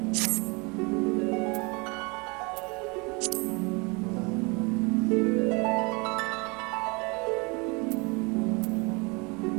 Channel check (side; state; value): left; quieter; 28.9 dB